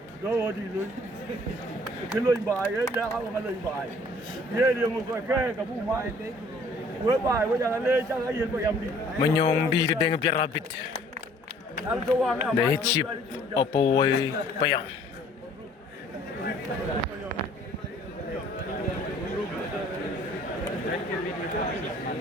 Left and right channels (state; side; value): normal; both; correlation 0.56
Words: dah di loy. Kalau bayar, dah awak kalau bayar. Dia muka kabu mai. Menyong di dengan biar rabit. Dah chip apa way payang.